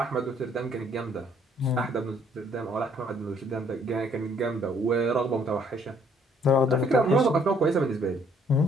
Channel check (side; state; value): both; normal; correlation 0.64